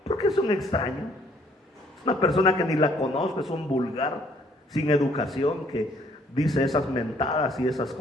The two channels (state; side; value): normal; both; correlation 0.63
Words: Porque es un extraño. Es una persona que ni la conozco, es un vulgar, sin educación, que dice esas mentadas y esas